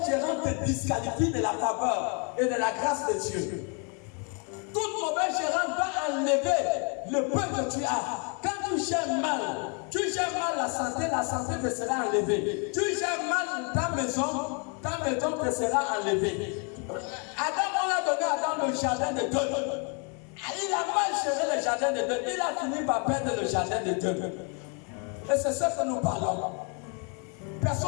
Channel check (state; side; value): quieter; right; 37.0 dB